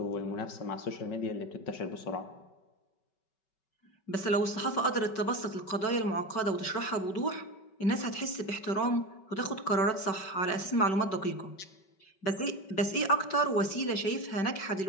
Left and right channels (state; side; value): late; right; 5.3 ms